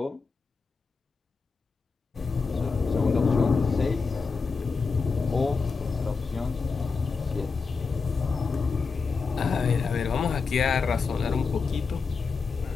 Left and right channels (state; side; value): quieter; right; 4.7 dB